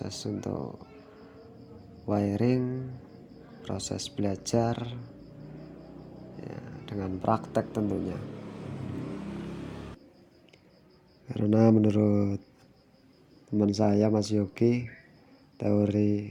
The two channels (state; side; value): identical; both; correlation 1.00